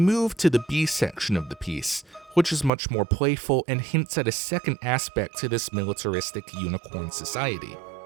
to the B section of the piece, which is much more playful and hints at a second aspect to this militaristic unicorn society.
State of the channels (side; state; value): left; drops out; at 2.7 s